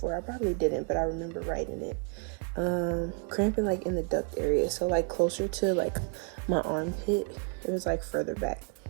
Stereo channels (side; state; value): left; quieter; 36.8 dB